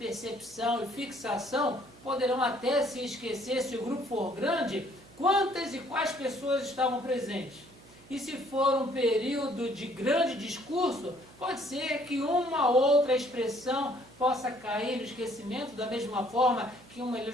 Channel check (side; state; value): right; noise; hum, 25 dB below the sound